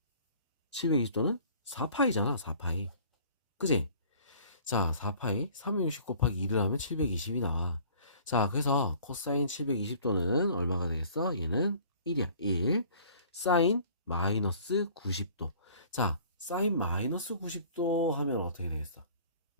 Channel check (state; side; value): inverted; both; correlation -0.51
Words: 720도는 4파이잖아, 4파이. 그지? 자, 4파이 360 곱하기 2를 하면 720이 나와. 자, 그래서 코사인 720도는 얼마가 되겠어? 얘는 1이야. 1. 사인 마이너스 90도. 자, 사인 마이너스 90도 하면 어떻게 되겠어?